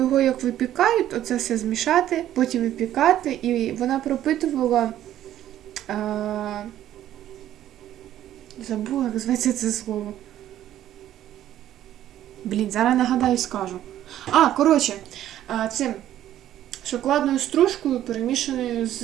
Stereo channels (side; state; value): left; quieter; 12.2 dB